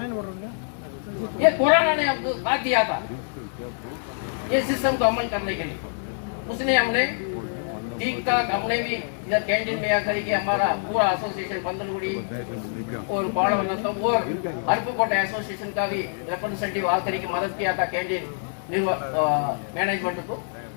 ये कोरोना ने हमको साथ दिया था ये सिस्टम को अमल करने के लिए। उसने हमने ठीक ठाक, हमने भी इधर कैंटीन में आकर के हमारा पूरा एसोसिएशन बंदलगुड़ी और बाड़वनतम और अरपुकोटे एसोसिएशन का भी रिप्रेजेंटेटिव आकर के मदद किया था कैंटीन मैनेजमेंट को।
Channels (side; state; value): right; silent; digital silence